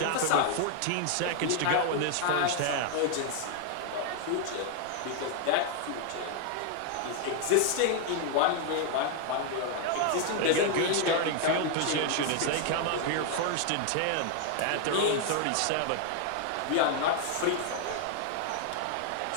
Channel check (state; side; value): different; both; correlation 0.00